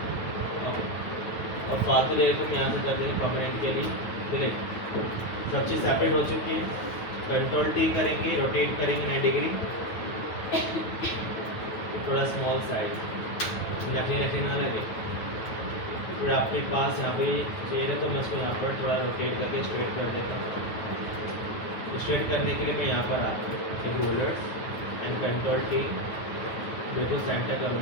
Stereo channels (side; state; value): right; late; 9.2 ms